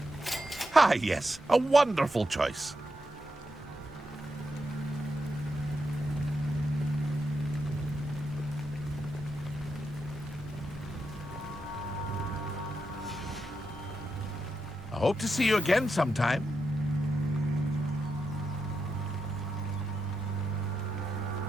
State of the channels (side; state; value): both; normal; correlation 0.85